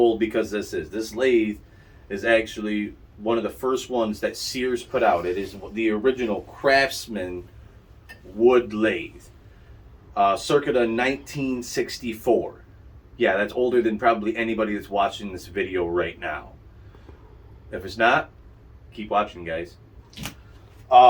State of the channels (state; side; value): identical; both; correlation 1.00